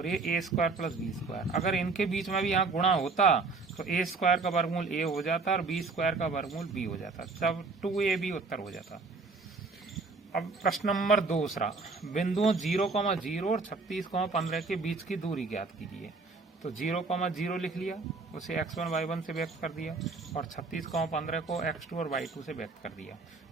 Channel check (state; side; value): quieter; left; 4.1 dB